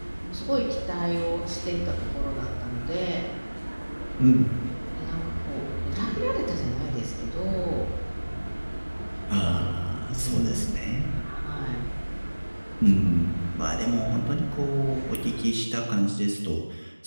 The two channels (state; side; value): inverted; both; correlation -1.00